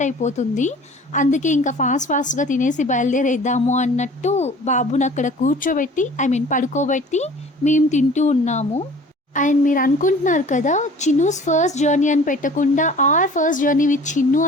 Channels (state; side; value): normal; both; correlation 0.47